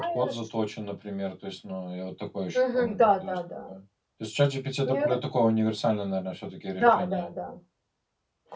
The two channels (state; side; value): identical; both; correlation 1.00